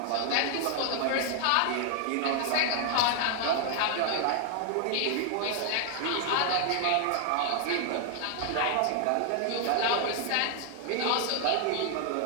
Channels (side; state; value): both; different; correlation 0.00